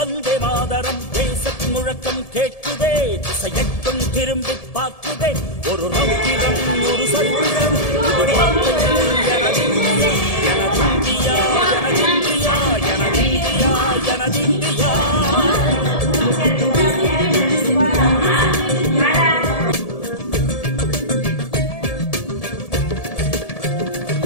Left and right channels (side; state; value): right; late; 1.7 ms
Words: மாதரம் தேசத்தின் முழக்கம் கேட்குதே திசை எட்டும் திரும்பி பார்க்குதே ஒரு ரௌத்திரம் ஒரு சரித்திரம் இரு வார்த்தையில் எனதிந்தியா எனதிந்தியா எனதிந்தியா எனதிந்தியா எனதிந்தியா